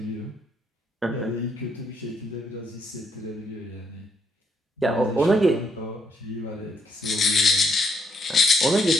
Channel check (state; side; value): normal; both; correlation 0.73